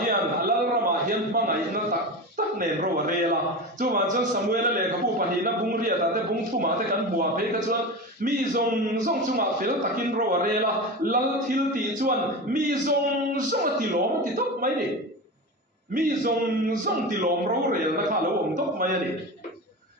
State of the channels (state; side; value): normal; both; correlation 0.25